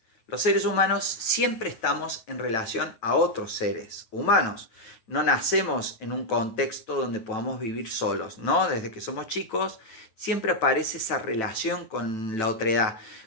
Los seres humanos siempre estamos en relación a otros seres humanos. No nacemos en un contexto donde podamos vivir solos, ¿no? Desde que somos chicos siempre aparece esa relación con la otredad,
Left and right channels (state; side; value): late; right; 9.2 ms